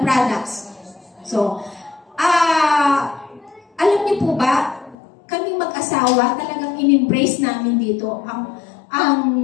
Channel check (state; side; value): drops out; right; at 5.0 s